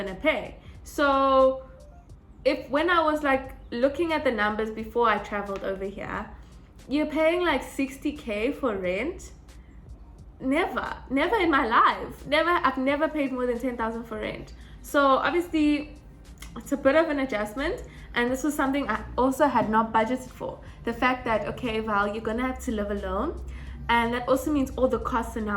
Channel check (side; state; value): both; identical; correlation 1.00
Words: to pay. So when I was like looking at the numbers before I traveled over here, you're paying like 60k for rent. Never in my life. I've never paid more than 10,000 for rent. So obviously it's a bit of an adjustment, and this was something I also had not budgeted for. The fact that, okay, Val, you're gonna have to live alone, and that also means all the costs are